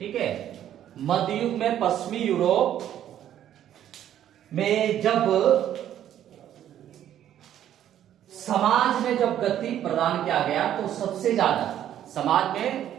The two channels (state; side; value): quieter; left; 11.0 dB